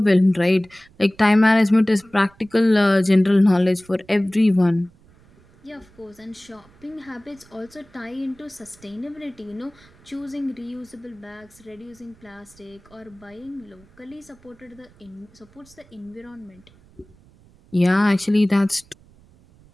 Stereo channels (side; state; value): right; noise; rumble, 28 dB below the sound